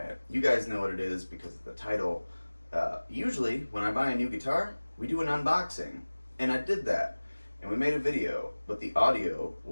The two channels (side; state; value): both; inverted; correlation -1.00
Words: You guys know what it is because of the title. Usually, when I buy a new guitar, we do an unboxing, and I did that, and we made a video, but the audio